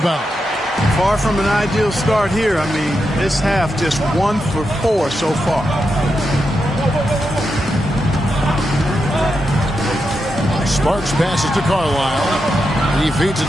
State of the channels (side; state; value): both; normal; correlation 0.86